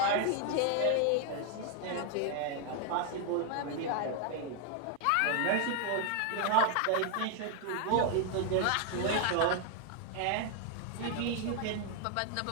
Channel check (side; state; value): both; different; correlation 0.00